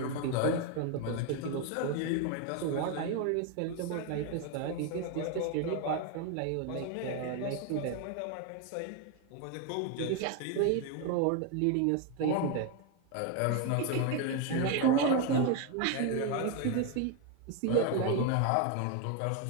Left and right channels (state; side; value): different; both; correlation 0.02